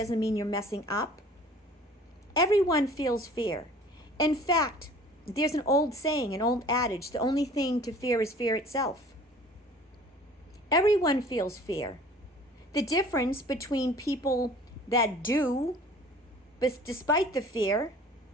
mean you're messing up. Everyone feels fear. In fact, there's an old saying, an old adage, the only thing to fear is fear itself. Everyone feels fear. The difference between people that do, but despite the fear,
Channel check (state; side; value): normal; both; correlation 0.48